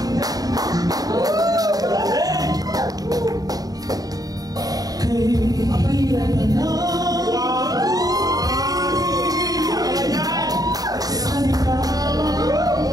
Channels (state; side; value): late; left; 0.18 ms